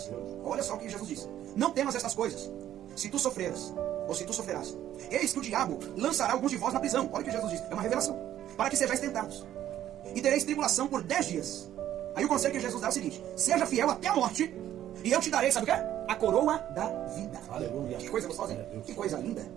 Olha só o que Jesus diz: não temas estas coisas, se tu sofreras, ou se tu sofrerás, eis que o diabo lançará alguns de vós na prisão. Olha o que Jesus diz, é uma revelação: para que sejais tentados, e tereis tribulação por 10 dias. Aí o conselho que Jesus dá é o seguinte: seja fiel até a morte, e eu te darei, sabe o que é? A coroa da vida. Aleluia. Que coisa gostosa, hein? Que coisa linda.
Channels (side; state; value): left; quieter; 11.9 dB